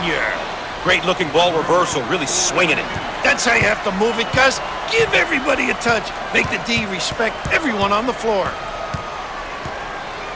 Great looking ball reversal, really swinging it. That's how you have to move it, Gus. Give everybody a touch. Make the D respect everyone on the floor.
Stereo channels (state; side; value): identical; both; correlation 1.00